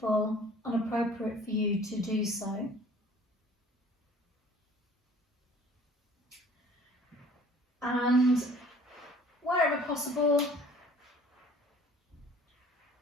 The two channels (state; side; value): normal; both; correlation 0.51